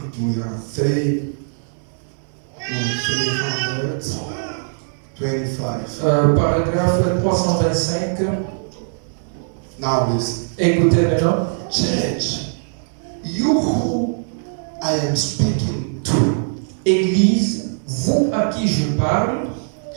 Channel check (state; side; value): silent; left; 65 dB below the other